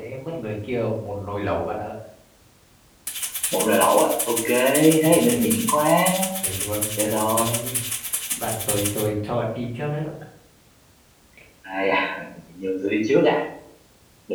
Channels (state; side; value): identical; both; correlation 1.00